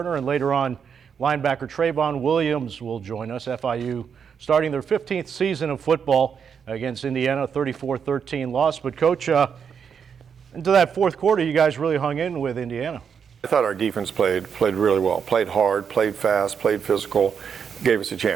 and later on, linebacker Treyvon Williams will join us. FIU starting their 15th season of football against Indiana, 34-13 loss. But coach, into that fourth quarter, you guys really hung in with Indiana. I thought our defense played really well, played hard, played fast, played physical, gave us a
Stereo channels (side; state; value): left; quieter; 7.0 dB